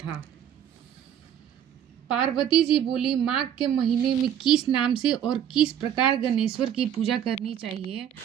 पार्वती जी बोली, माघ के महीने में किस नाम से और किस प्रकार गणेश्वर की पूजा करनी चाहिए,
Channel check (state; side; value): quieter; left; 9.7 dB